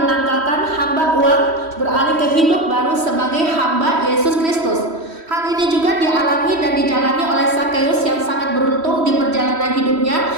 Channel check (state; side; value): late; left; 3.1 ms